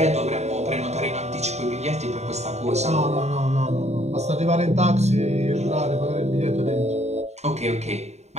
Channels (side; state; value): left; late; 0.32 ms